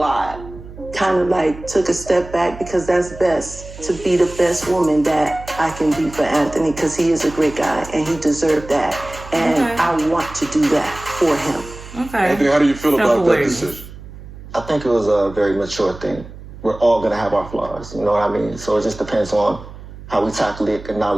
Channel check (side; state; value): right; noise; hum, 15 dB below the sound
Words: Kind of like took a step back because that's best, to be the best woman that I can be for Anthony, because he is a great guy and he deserved that. And I want to do that for him. Okay. Anthony, how do you feel about that decision? I think it was a very mature thing. We're all going to have our flaws, you know what I mean? So it just depends on how we tackle it,